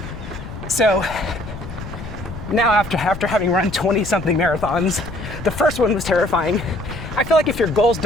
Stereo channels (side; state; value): left; noise; rumble, 11 dB below the sound